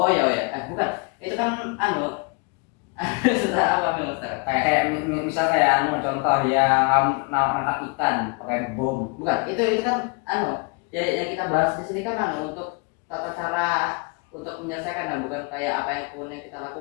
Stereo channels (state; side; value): quieter; right; 30.3 dB